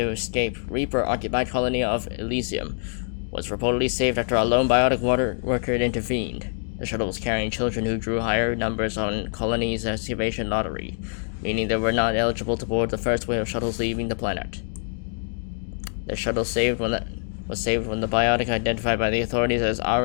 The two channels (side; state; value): right; silent; digital silence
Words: escape Reaper-occupied colony of Elysium, was reportedly saved after a lone biotic water worker intervened. The shuttle was carrying children who drew higher numbers on colony's excavation lottery, meaning they were not eligible to board the first wave of shuttles leaving the planet. The shuttle was saved when the biotic identified by the authorities as